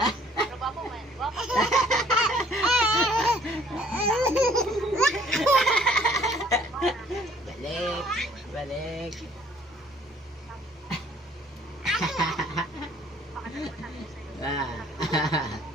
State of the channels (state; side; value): normal; both; correlation 0.59